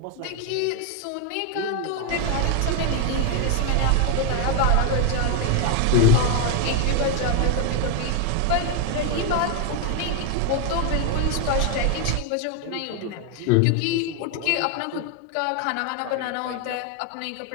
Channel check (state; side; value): different; both; correlation 0.01